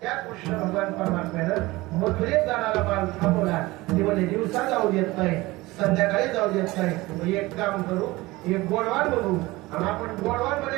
त्या कृष्ण भगवान परमात्म्यानं मथुरेत जाणारा माल थांबवला. ते म्हणजे दिवसा जाऊ देत नाही, संध्याकाळी जाऊ देत नाही. एक काम करू, एक गोडवान बघू आणि आपण गोडवान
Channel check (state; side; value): quieter; left; 20.4 dB